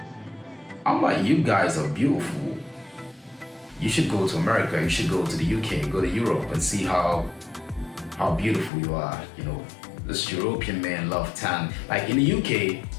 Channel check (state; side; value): drops out; right; at 8.7 s